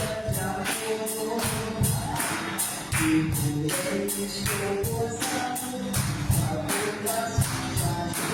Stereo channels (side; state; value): both; identical; correlation 1.00